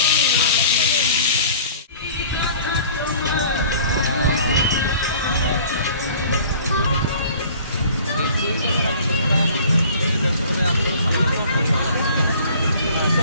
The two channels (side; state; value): both; inverted; correlation -0.48